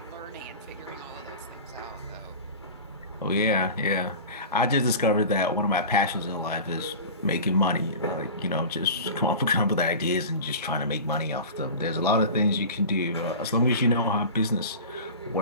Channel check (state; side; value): inverted; both; correlation -0.34